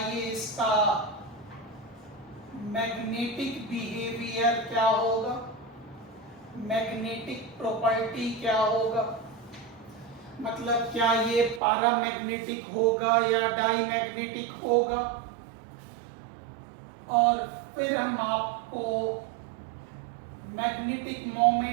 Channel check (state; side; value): drops out; left; at 11.6 s